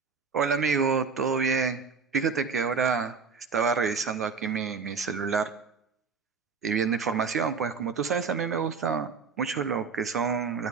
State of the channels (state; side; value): quieter; left; 5.3 dB